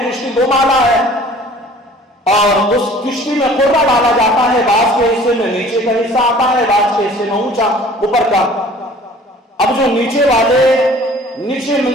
کشتی 2 مالا ہے اور اس کشتی میں قرہ ڈالا جاتا ہے. بعض کے حصے میں نیچے کا حصہ آتا ہے، بعض کے حصے میں اونچا اوپر کا. اب جو نیچے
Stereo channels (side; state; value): both; normal; correlation 0.49